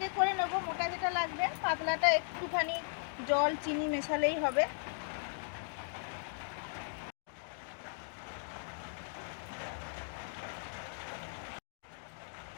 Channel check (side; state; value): right; silent; digital silence